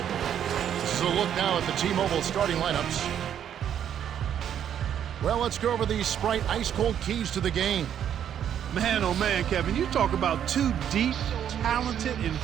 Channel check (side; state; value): left; quieter; 9.5 dB